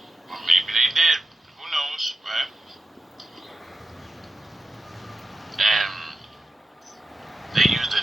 Or maybe they did. Who knows, right? And they used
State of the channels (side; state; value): both; normal; correlation 0.91